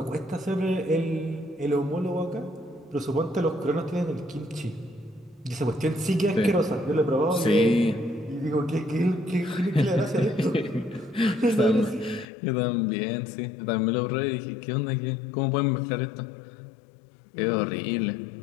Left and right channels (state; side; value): drops out; right; at 12.2 s